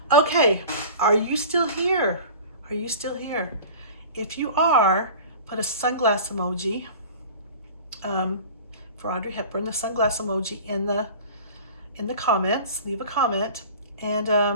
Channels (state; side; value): inverted; both; correlation -0.40